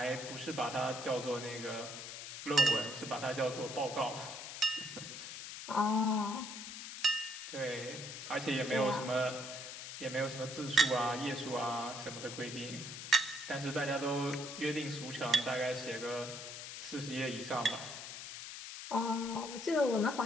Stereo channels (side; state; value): left; noise; hiss, 9 dB below the sound